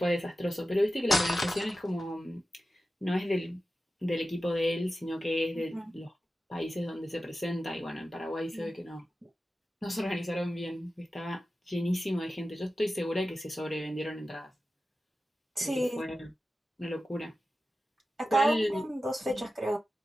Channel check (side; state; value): both; normal; correlation 0.93